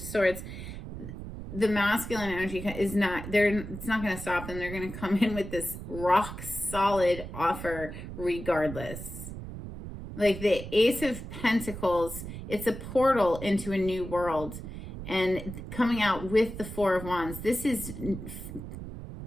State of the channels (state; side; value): noise; right; rumble, 10 dB below the sound